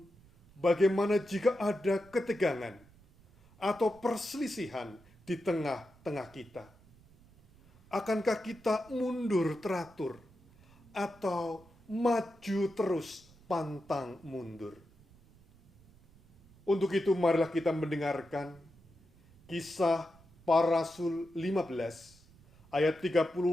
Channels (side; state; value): right; noise; rumble, 27 dB below the sound